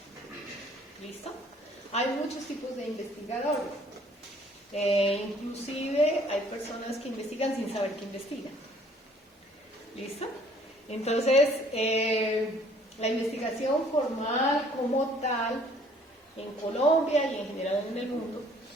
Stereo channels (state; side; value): normal; both; correlation 0.58